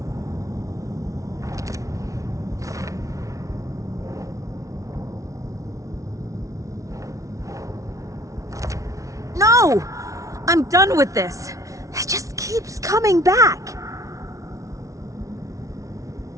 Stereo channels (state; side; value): late; left; 0.16 ms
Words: No! I'm done with this. It just keeps coming back.